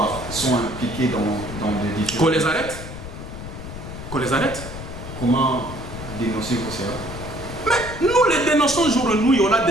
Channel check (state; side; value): noise; left; rumble, 10 dB below the sound